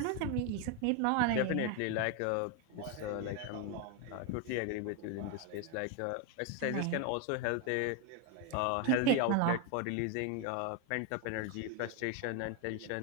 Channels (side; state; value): both; different; correlation 0.02